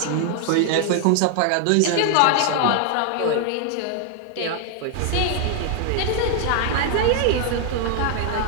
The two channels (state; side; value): different; both; correlation 0.00